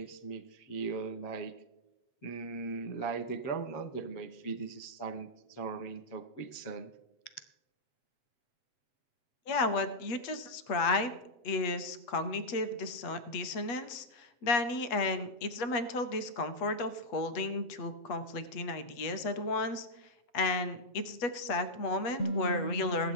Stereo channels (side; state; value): right; late; 8.3 ms